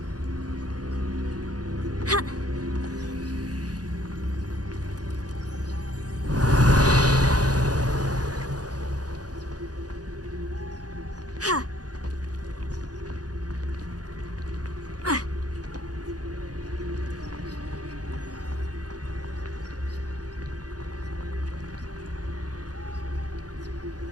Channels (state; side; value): late; left; 0.68 ms